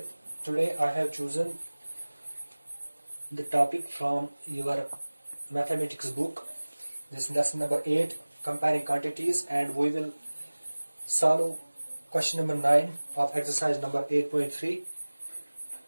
Today I have chosen the topic from your mathematics book. This is lesson number 8, comparing quantities, and we will solve question number 9 of exercise number 8.3.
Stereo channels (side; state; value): both; inverted; correlation -1.00